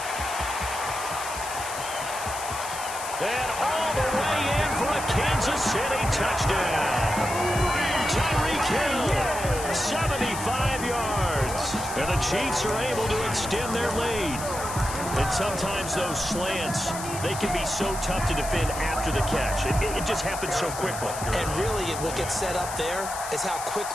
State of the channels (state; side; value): noise; left; hiss, 9 dB below the sound